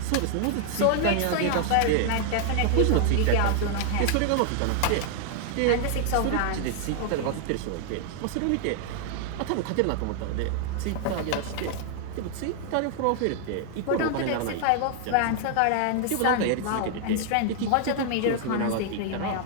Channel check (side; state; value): both; different; correlation -0.01